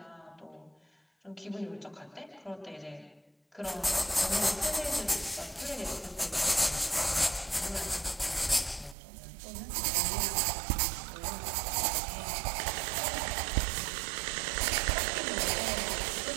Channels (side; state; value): left; drops out; at 9.0 s